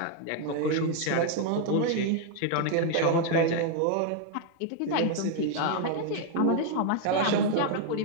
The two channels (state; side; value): different; both; correlation 0.00